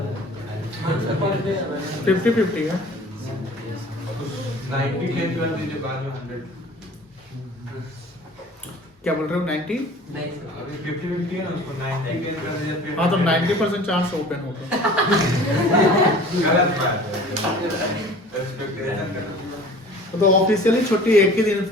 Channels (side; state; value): both; normal; correlation 0.45